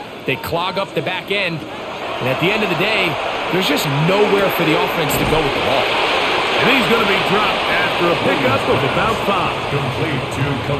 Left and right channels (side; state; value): both; identical; correlation 1.00